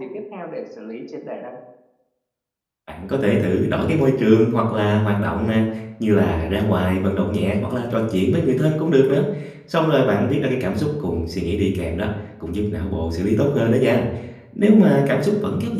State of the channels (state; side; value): identical; both; correlation 1.00